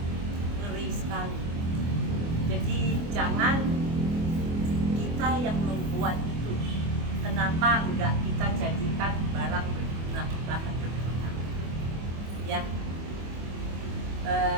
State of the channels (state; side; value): late; left; 25 ms